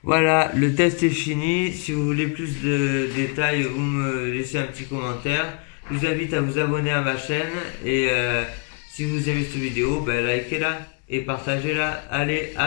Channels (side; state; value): right; quieter; 38.0 dB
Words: Voilà, le test est fini. Si vous voulez plus de détails, vous me laissez un petit commentaire. Je vous invite à vous abonner à ma chaîne. Et si vous aimez cette vidéo, ben likez-la et partagez-la. Allez,